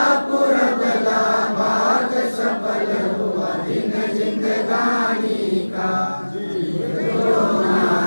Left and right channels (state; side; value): inverted; both; correlation -1.00